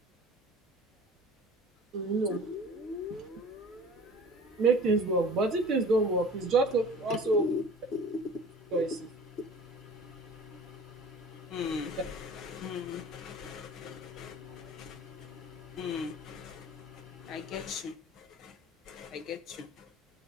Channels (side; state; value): both; normal; correlation 0.43